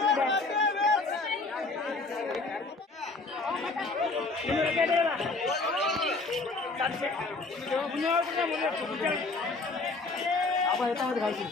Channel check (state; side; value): quieter; right; 3.6 dB